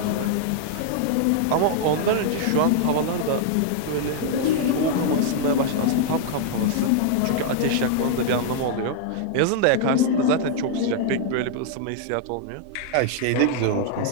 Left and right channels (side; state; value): both; different; correlation 0.00